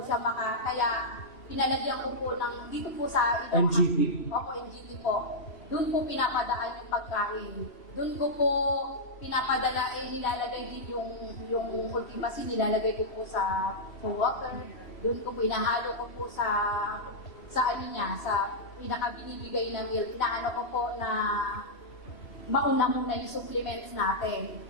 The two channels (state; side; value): late; right; 3.0 ms